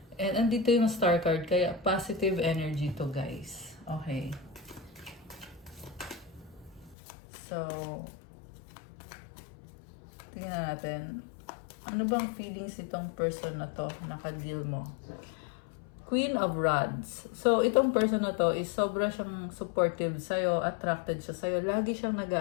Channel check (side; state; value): right; drops out; at 7.0 s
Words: And andito yung star card, kaya positive energy to, guys. Okay. So, tingnan natin. Ano bang feelings itong person na to naka-deal mo? Queen of Rods. So, itong person na to is sobra siyang supportive sa'yo, attracted siya sa'yo. Lagi siyang